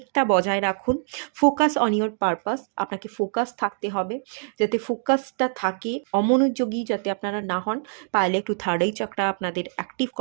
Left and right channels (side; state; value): left; silent; digital silence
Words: বজায় রাখুন, ফোকাস অন ইয়োর পারপাস। আপনাকে ফোকাস থাকতে হবে, যাতে ফোকাসটা থাকে, অমনোযোগী যাতে আপনারা না হন। পারলে একটু থার্ড আই চক্রা আপনাদের অ্যাক্টিভ